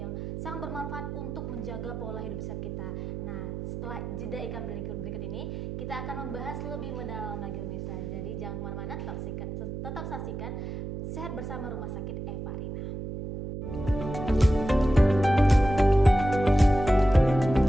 sangat bermanfaat untuk menjaga pola hidup sehat kita. Nah, setelah jeda iklan berikut ini, kita akan membahas lebih mendalam lagi pemirsa. Jadi jangan kemana-mana, tetap saksikan Sehat Bersama Rumah Sakit Evarina.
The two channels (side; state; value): right; noise; hum, 7 dB below the sound